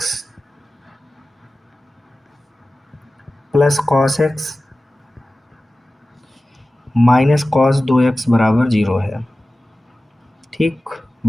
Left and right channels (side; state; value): both; normal; correlation 0.96